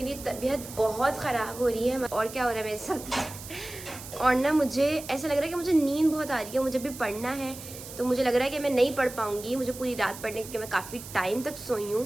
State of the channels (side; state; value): right; noise; hiss, 13 dB below the sound